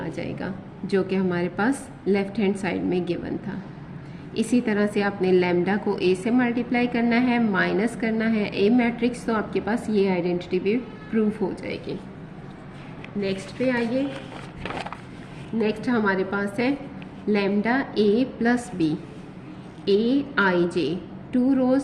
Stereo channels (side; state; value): both; identical; correlation 1.00